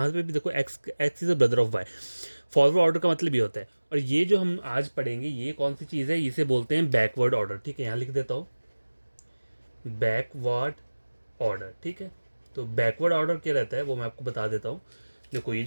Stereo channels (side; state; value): both; inverted; correlation -1.00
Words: पे भी देखो x is a brother of Y. Forward order का मतलब ये होता है। और ये जो हम आज पढ़ेंगे ये कौन सी चीज़ है, इसे बोलते हैं बैकवर्ड ऑर्डर। ठीक है, यहाँ लिख देता हूँ बैकवर्ड ऑर्डर। ठीक है, तो बैकवर्ड ऑर्डर क्या रहता है वो मैं आपको बता देता हूँ। देखो ये